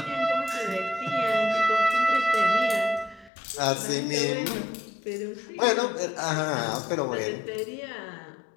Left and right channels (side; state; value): right; drops out; at 3.3 s